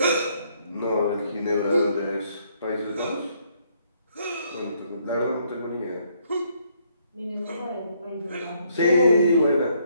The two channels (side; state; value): both; inverted; correlation -0.70